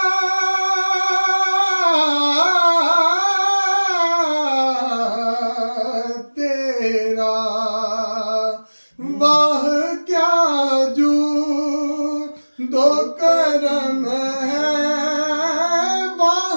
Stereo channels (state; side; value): inverted; both; correlation -1.00